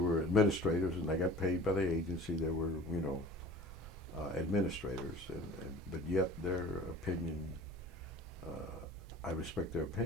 were administrators, and they got paid by the agency. There were, administrators, but yet their opinion, I respect their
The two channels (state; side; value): normal; both; correlation 0.43